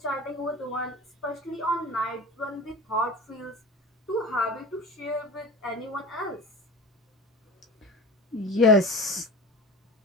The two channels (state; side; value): normal; both; correlation 0.34